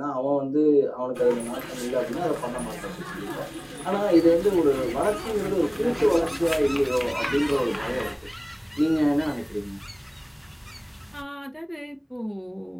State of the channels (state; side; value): identical; both; correlation 1.00